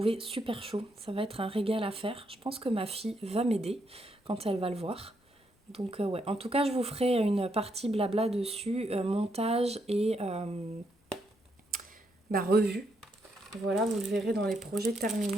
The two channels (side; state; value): both; normal; correlation 0.77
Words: super chaud. Ça va être un régal à faire. Je pense que ma fille va m'aider quand elle va le voir. Donc ouais, en tout cas je vous ferai une partie blabla dessus, montage et revue. Voilà, vous le verrez dans les projets